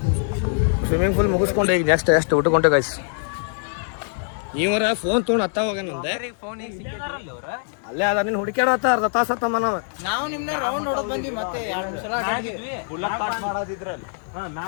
ಸ್ವಿಮ್ಮಿಂಗ್ ಪೂಲ್ ಮುಗಿಸ್ಕೊಂಡು ಈಗ ನೆಕ್ಸ್ಟ್ ಎಷ್ಟು ಊಟಕೊಂಡೆ ಗೈಸ್. ಇವರ ಫೋನ್ ತೊಗೊಂಡು ಹತ್ತ ಹೋಗ್ಯಾನಂದೆ ಅಲ್ಲೇ ಅದ ನೀನು ಹುಡುಕ್ಯಾಡತ್ತ ಅರ್ಧ ತಾಸ ಹತ್ತಮ್ಮ ನಾವು ನಿಮ್ನ ರೌಂಡ್ ಹೊಡೆದ್ ಬಂದ್ವಿ ಮತ್ತೆ 2 ಸಲ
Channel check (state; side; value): silent; right; 63 dB below the other